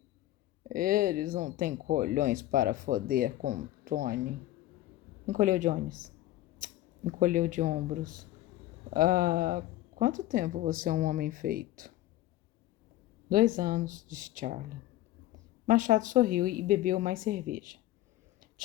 Eles não têm colhões para foder com Tony. Encolheu de ombros. Há quanto tempo você é um homem feito? 2 anos, disse Charlie. Machado sorriu e bebeu mais cerveja.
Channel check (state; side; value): quieter; right; 15.1 dB